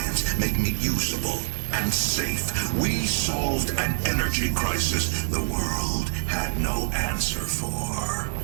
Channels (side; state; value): left; silent; digital silence